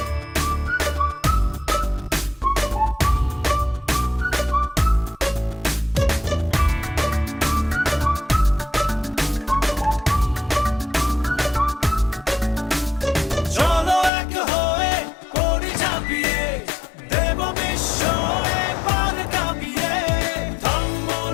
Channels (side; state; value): right; drops out; at 14.1 s